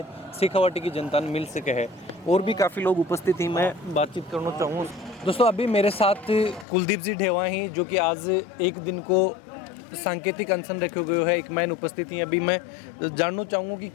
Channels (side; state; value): right; drops out; at 6.7 s